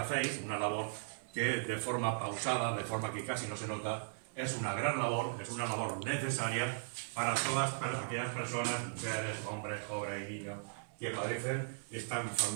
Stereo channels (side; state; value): left; silent; 53 dB below the other